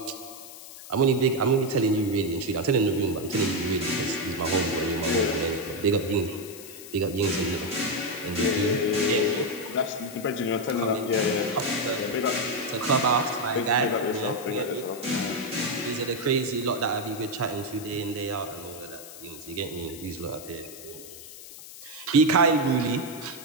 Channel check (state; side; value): noise; left; hiss, 15 dB below the sound